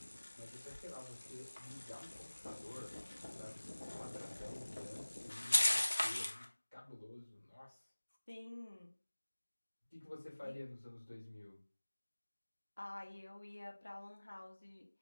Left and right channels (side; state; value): both; inverted; correlation -1.00